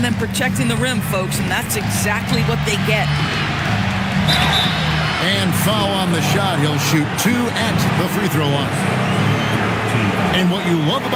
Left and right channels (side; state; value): both; identical; correlation 1.00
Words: than protecting the rim, folks, and that's exactly what they get. And foul on the shot. He'll shoot 2 at the free throw line. And what you love